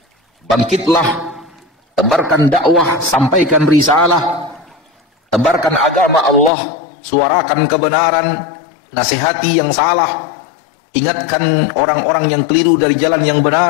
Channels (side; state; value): right; drops out; at 6.5 s